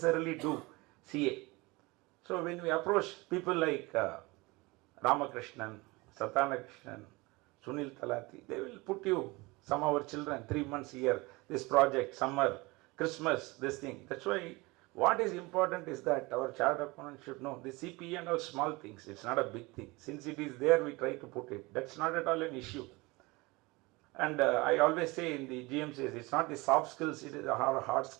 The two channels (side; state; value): left; quieter; 23.7 dB